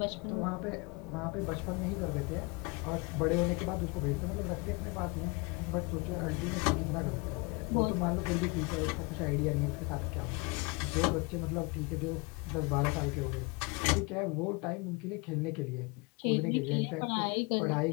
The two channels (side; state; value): right; quieter; 28.1 dB